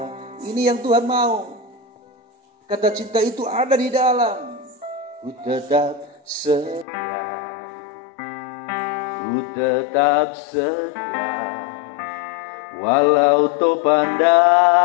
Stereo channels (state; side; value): drops out; right; at 6.9 s